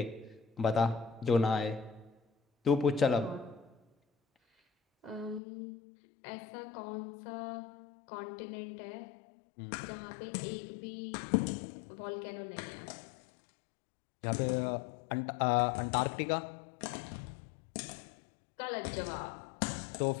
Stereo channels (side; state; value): right; drops out; at 5.4 s